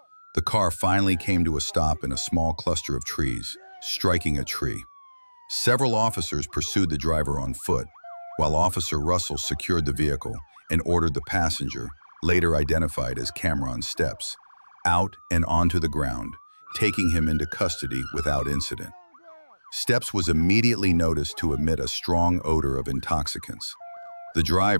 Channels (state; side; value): inverted; both; correlation -1.00